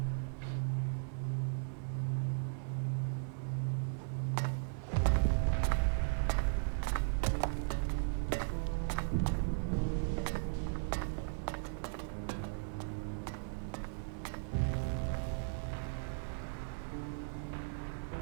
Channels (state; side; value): silent; left; 53 dB below the other